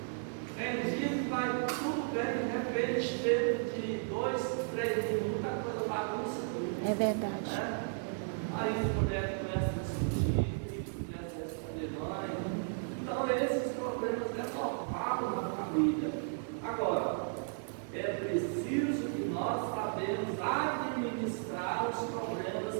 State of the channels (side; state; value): left; silent; digital silence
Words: Tem dia que vai tudo bem, de repente, de 2, 3 minutos, a coisa bagunça tudo. É verdade. Aí as mulheres começam a discutir, começam a responder mãe. Então, esses problemas é normal na família. Agora, é preciso que nós sabemos administrar os